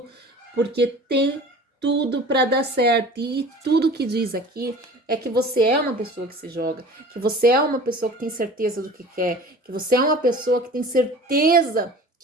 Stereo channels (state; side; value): normal; both; correlation 0.42